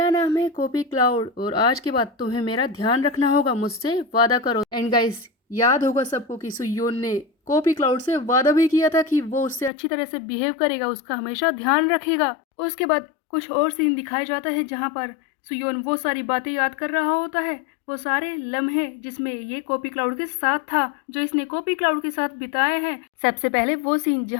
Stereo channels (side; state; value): right; drops out; at 9.7 s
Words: नाम है कॉपी क्लाउड और आज के बाद तुम्हें मेरा ध्यान रखना होगा, मुझसे वादा करो। एंड गाइस, याद होगा सबको कि सुयोन ने कॉपी क्लाउड से वादा भी किया था कि वो उससे अच्छी तरह से बिहेव करेगा, उसका हमेशा ध्यान रखेगा। उसके बाद कुछ और सीन दिखाया जाता है जहाँ पर सुयोन वो सारी बातें याद कर रहा होता है, वो सारे लम्हे जिसमें ये कॉपी क्लाउड के साथ था, जो इसने कॉपी क्लाउड के साथ बिताए हैं। सबसे पहले वो सीन